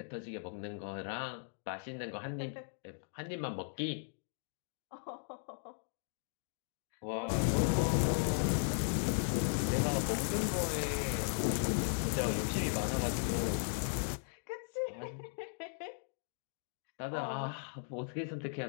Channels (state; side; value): silent; right; digital silence